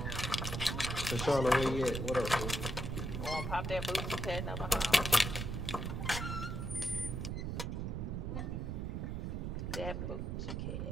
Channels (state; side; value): noise; right; rumble, 2 dB below the sound